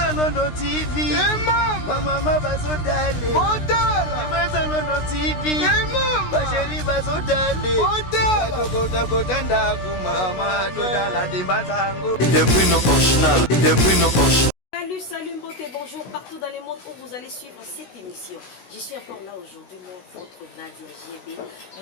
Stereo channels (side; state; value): right; late; 16 ms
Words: London TV. Mama bazodale. Odala. Dembanza London TV. Basheri bazodale. Odala. Kota ndaku mama todala Dembanza ngo. Des Bruno original, des Bruno original. Salut beauté, bonjour partout dans le monde où vous allez suivre cette émission. Je suis encore là aujourd'hui, moi, votre Nadia GB.